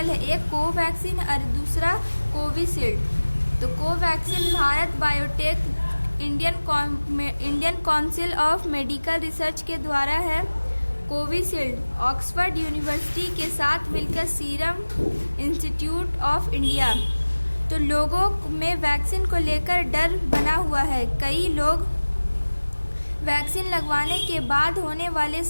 है, एक कोवैक्सीन और दूसरा कोविशील्ड। तो Covaxin Bharat biotech Indian council of medical research के द्वारा है। कोविशील्ड ऑक्सफोर्ड यूनिवर्सिटी के साथ मिलकर सीरम इंस्टीट्यूट ऑफ इंडिया। तो लोगों में वैक्सीन को लेकर डर बना हुआ है। कई लोग वैक्सीन लगवाने के बाद होने वाले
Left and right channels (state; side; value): inverted; both; correlation -1.00